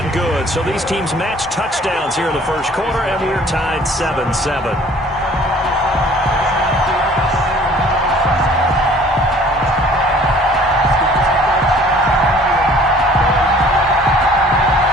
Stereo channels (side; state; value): both; normal; correlation 0.53